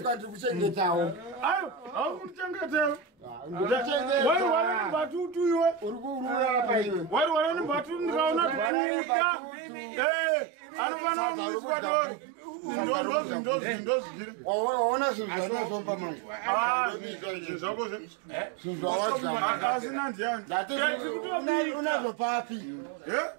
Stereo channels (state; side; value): drops out; left; at 8.7 s